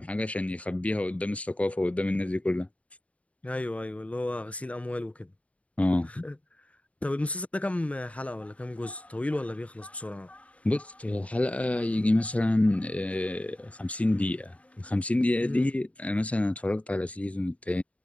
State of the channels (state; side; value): late; right; 0.066 ms